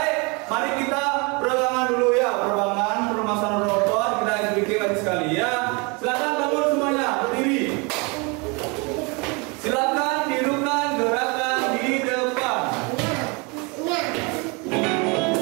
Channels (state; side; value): quieter; left; 29.9 dB